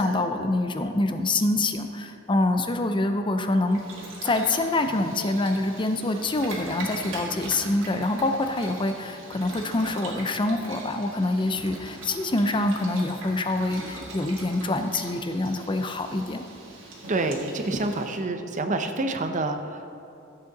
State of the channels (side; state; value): both; normal; correlation 0.55